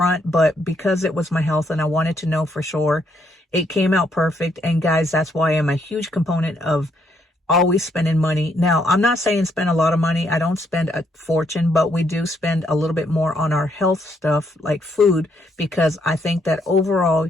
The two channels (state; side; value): normal; both; correlation 0.73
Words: but because it was my health and I wanted to know for sure, it came out perfect. And guys, that's why I'm a huge component of always spending money. Now, I'm not saying spend a lot of money. I don't spend a fortune, but we do spend a little bit more on our health stuff like food, because I think that overall